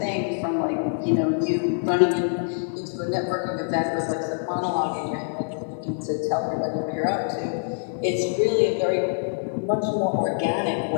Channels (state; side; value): silent; right; 62 dB below the other